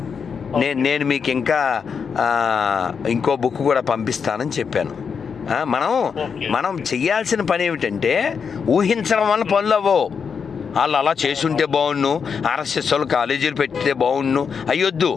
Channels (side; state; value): right; quieter; 6.3 dB